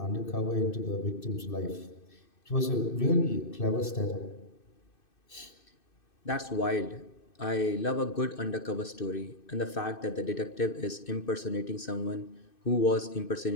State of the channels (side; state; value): right; late; 2.6 ms